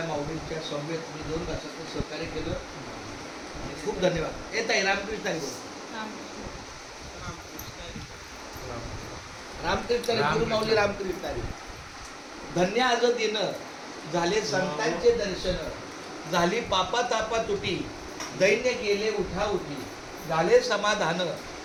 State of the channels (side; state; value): both; identical; correlation 1.00